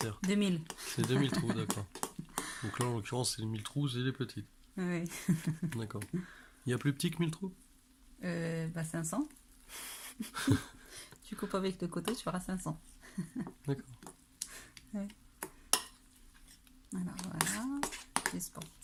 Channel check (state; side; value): identical; both; correlation 1.00